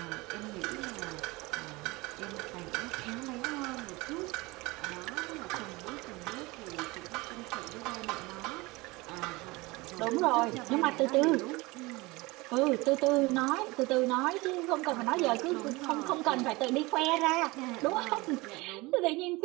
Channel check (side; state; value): left; quieter; 23.0 dB